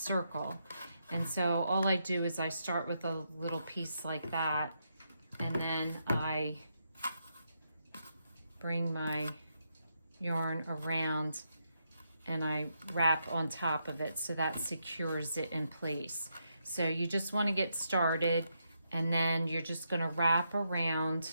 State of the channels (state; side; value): inverted; both; correlation -0.81